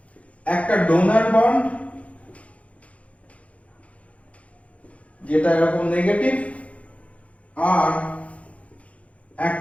একটা ডোনার বন্ড যেটা এরকম নেগেটিভ, আর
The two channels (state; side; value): late; right; 0.065 ms